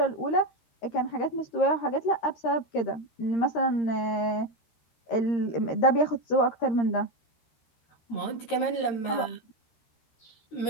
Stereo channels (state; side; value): late; right; 13 ms